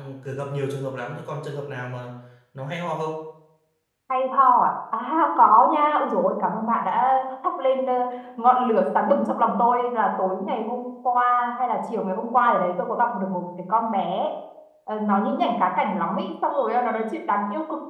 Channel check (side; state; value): both; identical; correlation 1.00